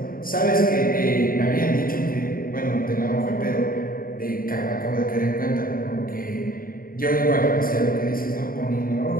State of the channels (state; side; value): late; right; 0.42 ms